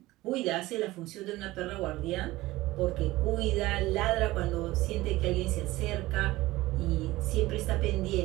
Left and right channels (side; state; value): left; quieter; 18.4 dB